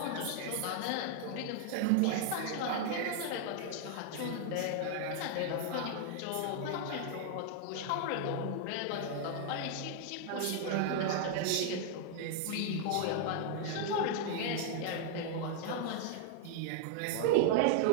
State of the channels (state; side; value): different; both; correlation 0.00